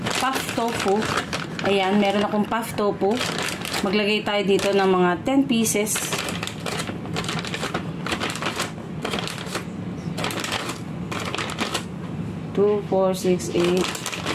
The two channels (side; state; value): both; identical; correlation 1.00